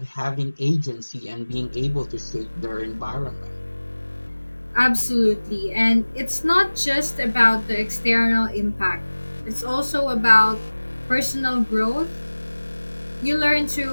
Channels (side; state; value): both; inverted; correlation -1.00